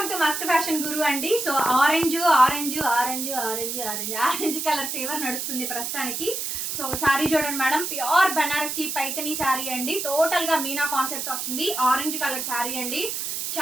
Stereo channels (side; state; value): right; noise; hiss, 3 dB below the sound